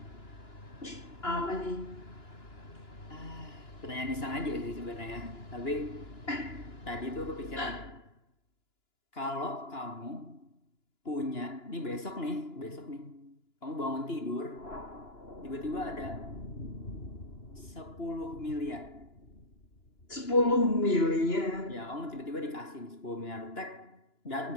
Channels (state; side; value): late; right; 2.9 ms